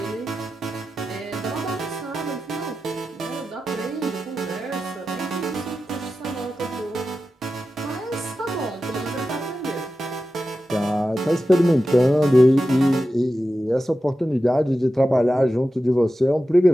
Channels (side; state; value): both; normal; correlation 0.92